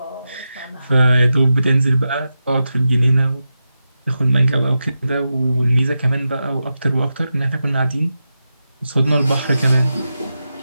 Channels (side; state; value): both; inverted; correlation -0.90